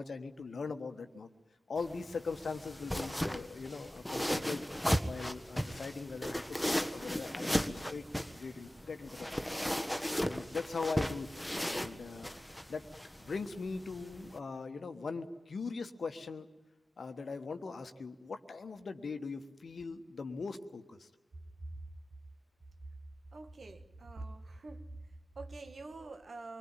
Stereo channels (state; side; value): normal; both; correlation 0.96